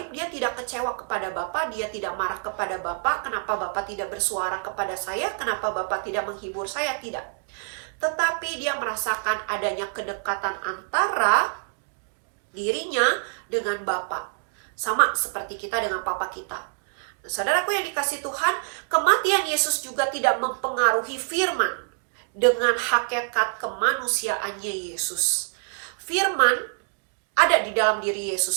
dia tidak kecewa kepada Bapa, dia tidak marah kepada Bapa. Kenapa Bapa tidak bersuara kepada saya? Kenapa Bapa tidak menghibur saya? Tidak. Tetapi dia merasakan adanya kedekatan antara dirinya dengan Bapa. Sama seperti kita dengan Papa kita. Nah, saudaraku yang dikasihi Tuhan, kematian Yesus juga tidak mempengaruhi firman dengan hakikat kemanusiaannya Yesus. Firman ada di dalam diri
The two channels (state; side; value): silent; left; digital silence